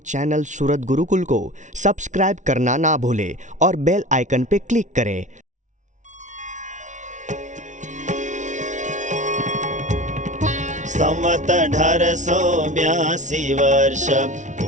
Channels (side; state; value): left; late; 0.36 ms